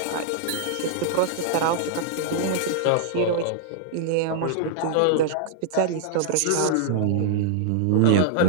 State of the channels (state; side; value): different; both; correlation -0.01